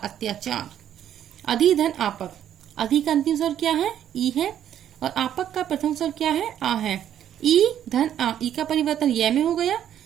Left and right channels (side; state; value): left; quieter; 10.3 dB